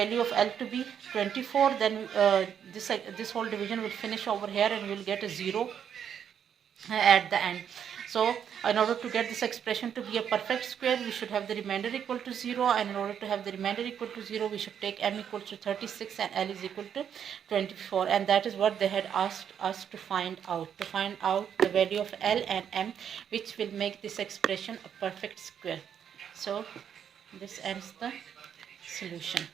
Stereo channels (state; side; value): quieter; left; 8.5 dB